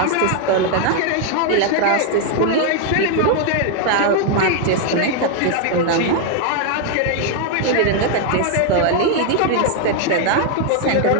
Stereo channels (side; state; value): both; different; correlation 0.00